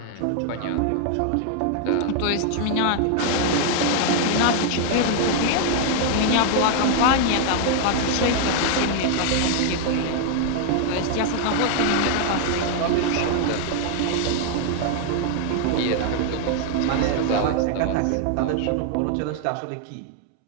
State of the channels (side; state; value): both; different; correlation 0.00